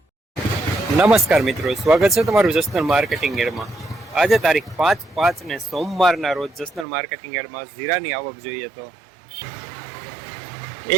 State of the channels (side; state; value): left; drops out; at 6.9 s